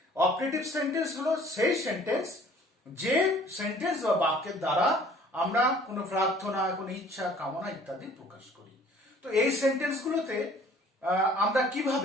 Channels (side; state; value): both; normal; correlation 0.53